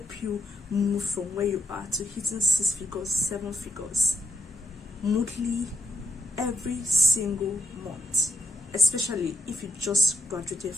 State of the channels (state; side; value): normal; both; correlation 0.80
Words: you move from where you are to hitting 6 figures, 7 figures monthly every single month, especially if you just graduated